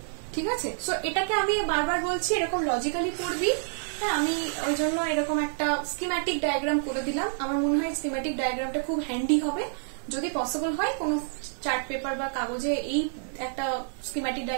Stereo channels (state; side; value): silent; left; digital silence